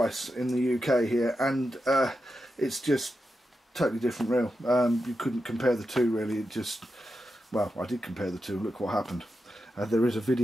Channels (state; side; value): normal; both; correlation 0.88